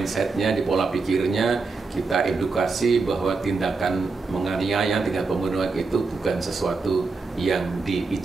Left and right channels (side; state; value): left; quieter; 4.2 dB